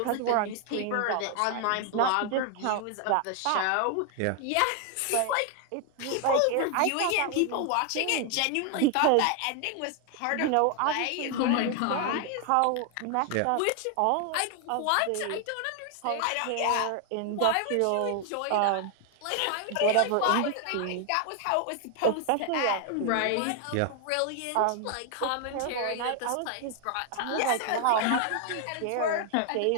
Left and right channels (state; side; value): different; both; correlation 0.00